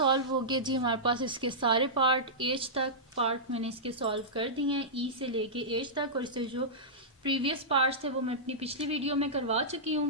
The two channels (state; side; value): normal; both; correlation -0.14